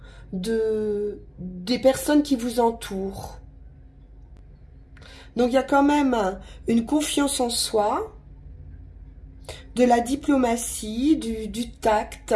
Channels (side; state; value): both; identical; correlation 1.00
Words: des personnes qui vous entourent. Donc il y a quand même une confiance en soi, de la diplomatie, du tact